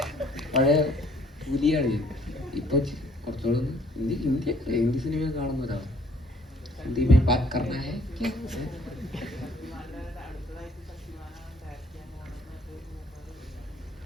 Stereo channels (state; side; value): normal; both; correlation 0.60